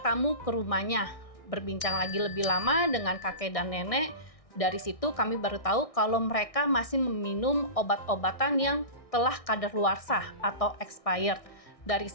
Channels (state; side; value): late; right; 1.6 ms